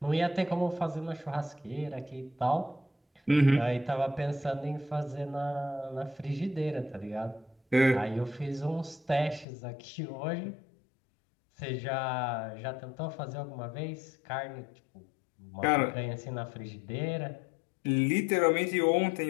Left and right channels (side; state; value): right; drops out; at 9.5 s